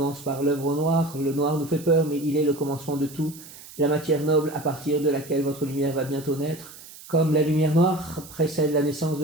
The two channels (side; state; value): right; noise; hiss, 18 dB below the sound